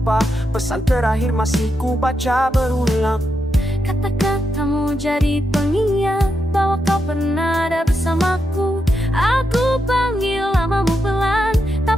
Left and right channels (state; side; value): normal; both; correlation 0.84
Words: pesan terakhir masih ku baca berulang. Kata-katamu jadi pengingat bahwa kau pernah ada bersamaku. Aku panggil namamu pelan,